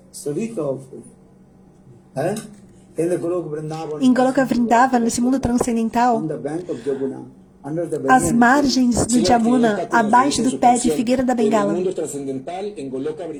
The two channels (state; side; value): identical; both; correlation 1.00